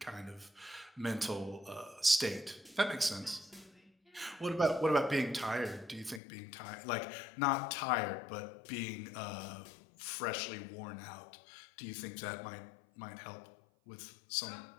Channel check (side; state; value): right; drops out; at 6.2 s